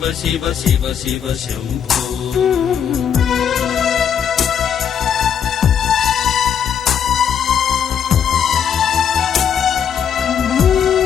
शिव शिव शिव शंभो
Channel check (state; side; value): quieter; right; 8.1 dB